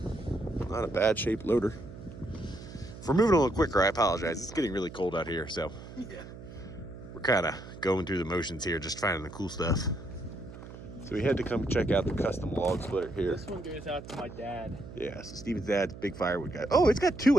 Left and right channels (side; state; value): right; noise; hum, 14 dB below the sound